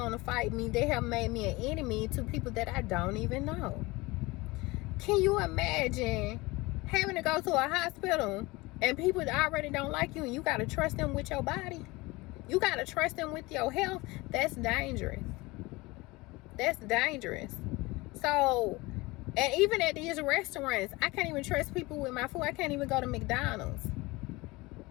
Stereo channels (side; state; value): right; quieter; 22.4 dB